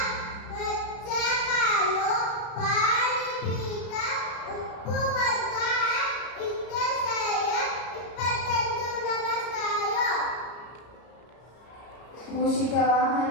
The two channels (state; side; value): late; right; 33 ms